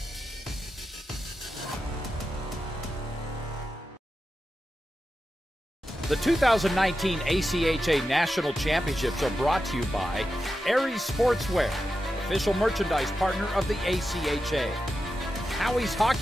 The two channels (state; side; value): normal; both; correlation 0.90